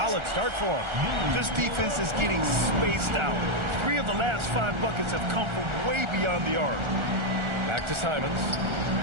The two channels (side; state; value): left; late; 1.4 ms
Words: start for him. This defense is getting spaced out. 3 of the last 5 buckets have come from way beyond the arc. Back to Simons.